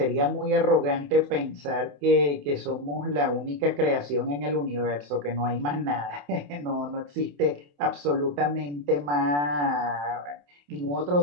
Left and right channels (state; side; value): late; left; 28 ms